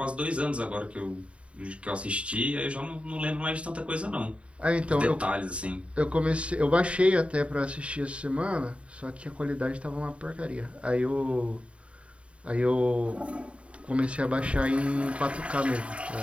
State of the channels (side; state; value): left; late; 0.061 ms